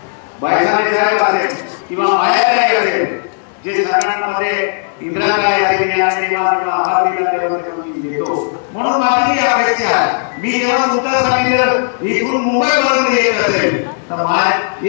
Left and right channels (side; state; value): right; silent; digital silence